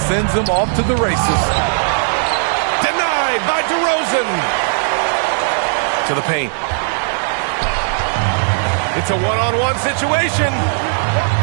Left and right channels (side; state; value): left; silent; 68 dB below the other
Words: sends him off to the races. By DeRozan to the paint. It's a one-on-one situation.